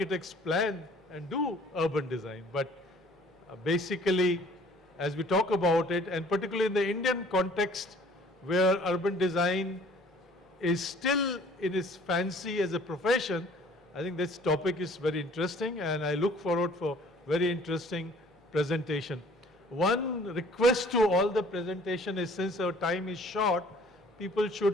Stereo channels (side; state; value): both; normal; correlation 0.54